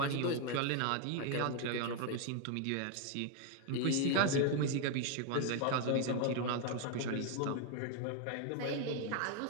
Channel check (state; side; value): different; both; correlation 0.01